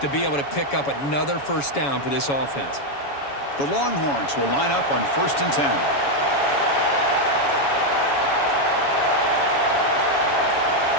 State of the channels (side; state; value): right; late; 7.1 ms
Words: be able to pick up another first down for this offense. The Longhorns will line up on 1st and 10.